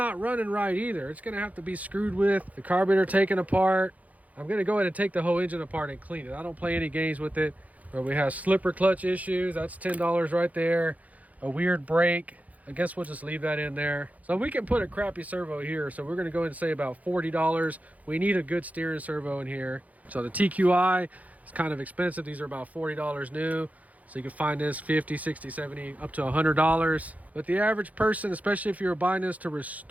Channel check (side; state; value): left; late; 0.074 ms